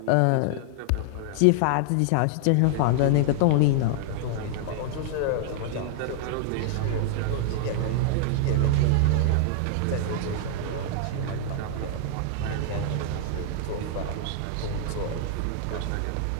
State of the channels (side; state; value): both; different; correlation -0.01